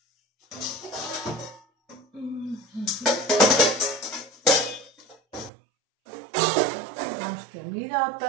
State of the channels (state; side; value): drops out; left; at 5.5 s